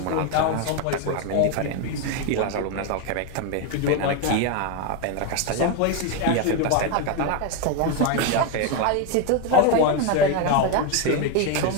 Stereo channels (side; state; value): both; different; correlation 0.02